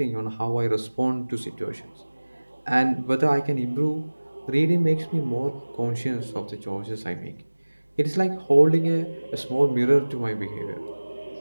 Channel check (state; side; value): inverted; both; correlation -1.00